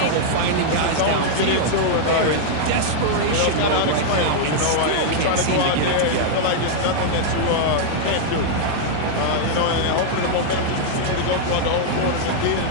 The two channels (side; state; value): both; different; correlation -0.01